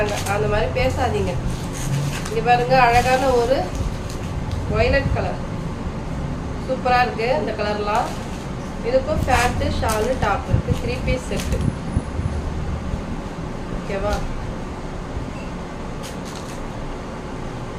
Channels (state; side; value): identical; both; correlation 1.00